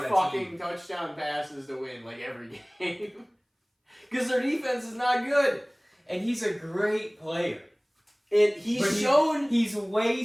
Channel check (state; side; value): identical; both; correlation 1.00